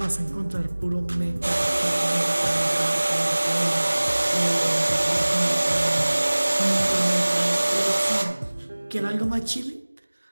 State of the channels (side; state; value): both; inverted; correlation -1.00